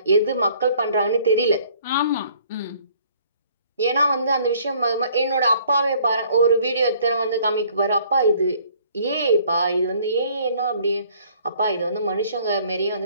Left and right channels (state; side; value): inverted; both; correlation -0.59